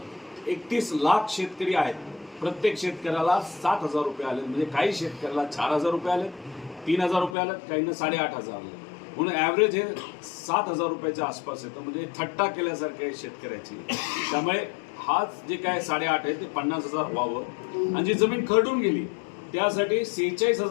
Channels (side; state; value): right; drops out; at 7.4 s